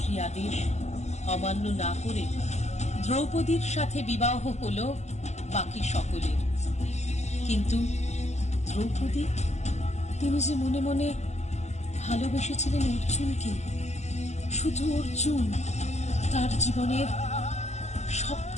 আদেশ অমান্য না করে দ্রৌপদীর সাথে বিবাহ হলো বাকি সকলের। কিন্তু দ্রৌপদী, তিনি যে মনে মনে ভালোবেসেছিলেন অর্জুনকে, শুধু অর্জুন, তার জীবনের সব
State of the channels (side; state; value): right; late; 0.33 ms